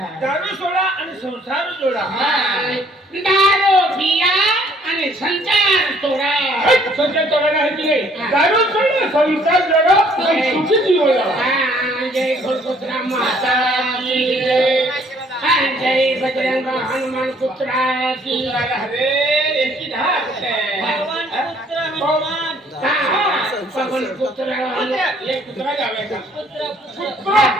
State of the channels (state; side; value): normal; both; correlation 0.61